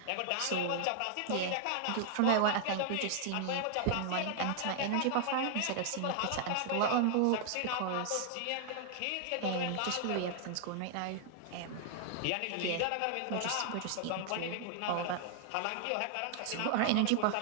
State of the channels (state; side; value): different; both; correlation 0.00